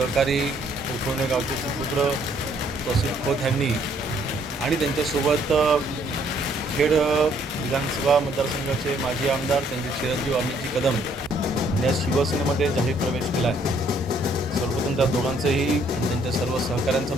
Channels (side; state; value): both; normal; correlation 0.65